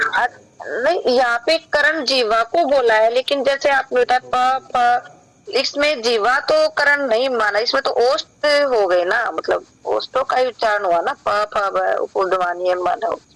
नहीं, यहाँ पे करण जीवा को बोला है, लेकिन जैसे आपने बताया प फ, इसमें जीवा तो करण नहीं माना, इसमें तो ओष्ठ हो गए ना, मतलब ओष्ठों का ही उच्चारण हुआ ना, प फ ऊर्ध्वानी माना।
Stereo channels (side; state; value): both; identical; correlation 1.00